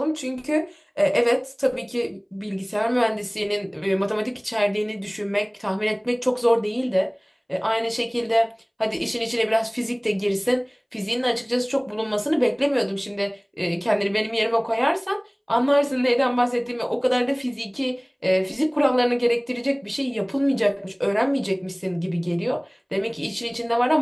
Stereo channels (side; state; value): both; identical; correlation 1.00